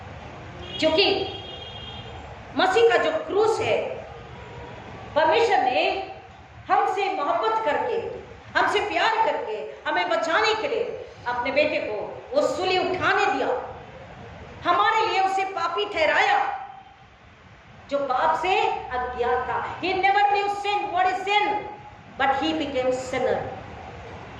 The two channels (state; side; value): identical; both; correlation 1.00